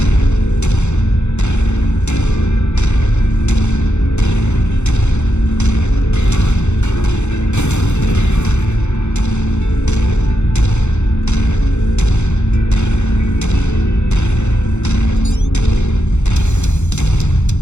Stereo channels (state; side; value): late; right; 0.83 ms